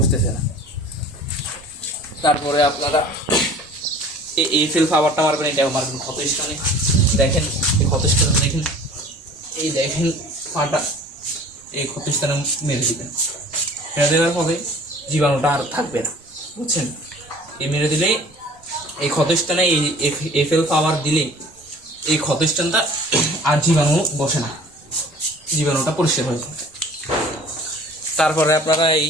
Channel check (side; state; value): both; normal; correlation 0.48